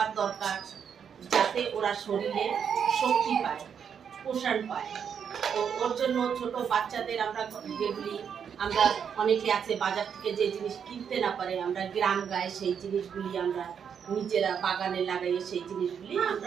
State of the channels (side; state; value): left; quieter; 7.5 dB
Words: দরকার, যাতে ওরা শরীরে শক্তি পায়, পোষণ পায়। তো ওর জন্য ছোট বাচ্চাদের আমরা যেগুলি আমরা অনেকে আছে বাজার থেকে যে জিনিস কিনতে না পারে, আমরা গ্রাম গায়ে সেই জিনিসগুলি আমরা নিজেরা বাগানে লাগাইয়ে সেই জিনিসগুলি